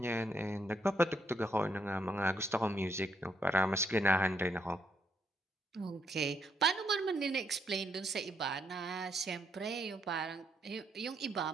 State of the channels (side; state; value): both; normal; correlation 0.74